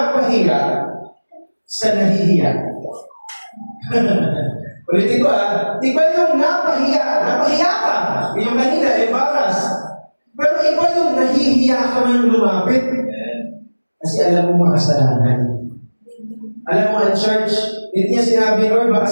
sa nahihiya. Ulitin ko iba yung napahiya. Napahiya ka. Yung kanina, embarrassed. Pero iba yung nahihiya ka man lumapit. Kasi alam mo makasalanan. Alam mo, ang church, hindi niya sinabi, Lord,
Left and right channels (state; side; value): inverted; both; correlation -1.00